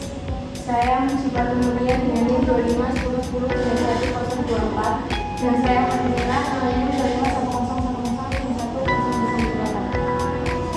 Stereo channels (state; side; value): identical; both; correlation 1.00